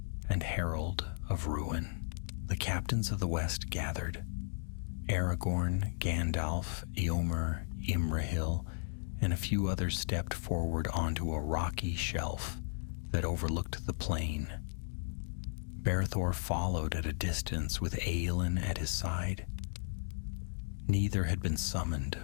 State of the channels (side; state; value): right; silent; digital silence